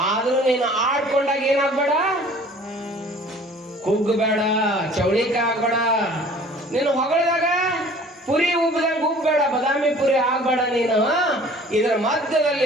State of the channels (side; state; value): both; normal; correlation 0.49